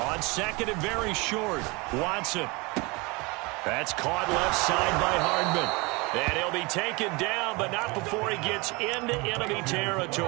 On second and very short, Watson. That's caught left side by Hardman. And he'll be taken down, but not before he gets into enemy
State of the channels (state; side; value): quieter; left; 26.2 dB